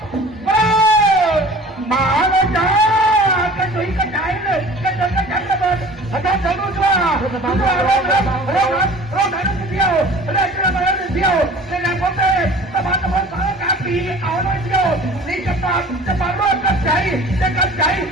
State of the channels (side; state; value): both; normal; correlation 0.44